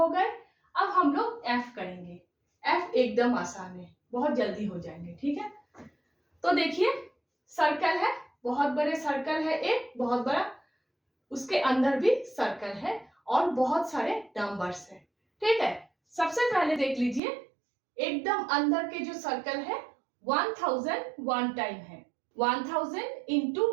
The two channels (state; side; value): drops out; left; at 17.2 s